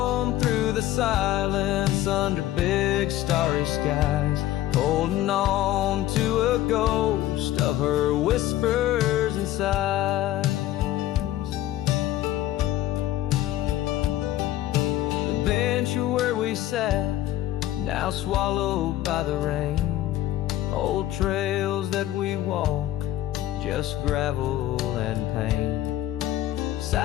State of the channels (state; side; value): quieter; right; 14.0 dB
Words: through the silence under big starry skies, holding on to a ghost of her whispers and sighs. The bench where we sat, now swallowed by the rain. Old trails that we walk, just gravel and pain.